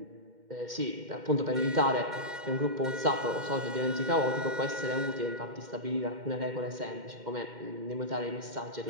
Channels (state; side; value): late; left; 2.1 ms